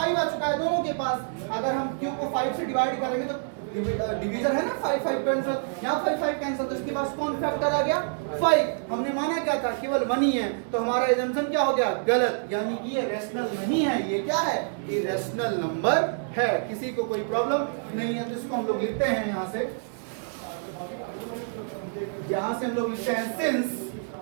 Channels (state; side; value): silent; left; digital silence